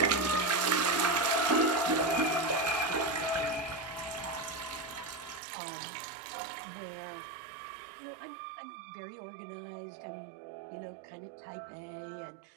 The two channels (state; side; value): drops out; left; at 5.4 s